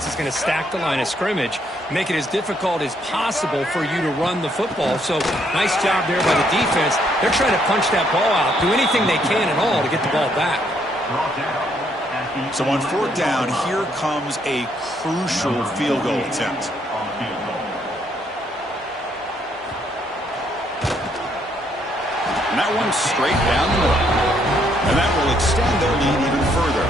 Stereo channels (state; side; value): normal; both; correlation 0.71